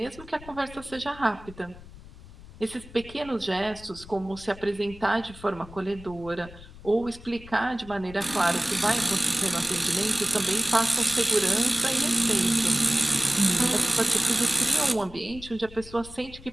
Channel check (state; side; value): noise; left; rumble, 18 dB below the sound